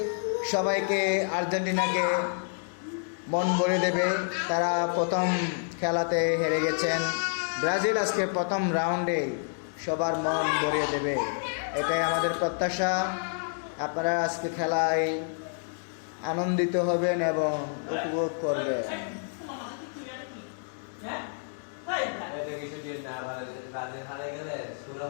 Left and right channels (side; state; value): right; silent; 59 dB below the other